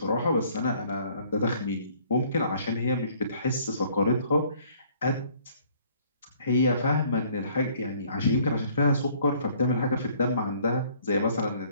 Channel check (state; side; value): inverted; both; correlation -0.59